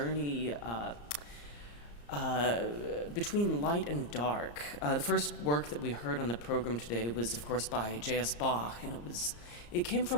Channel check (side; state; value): right; late; 34 ms